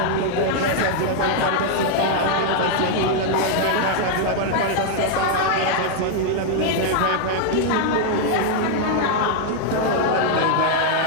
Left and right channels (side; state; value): both; different; correlation 0.00